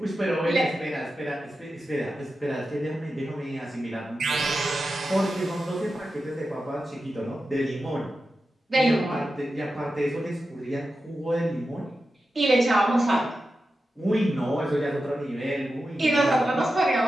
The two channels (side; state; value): both; normal; correlation 0.91